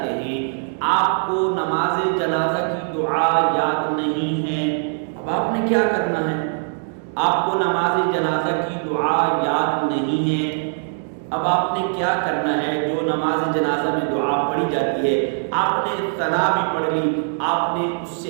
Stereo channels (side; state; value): left; silent; digital silence